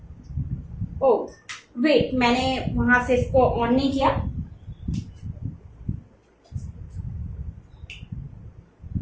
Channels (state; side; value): identical; both; correlation 1.00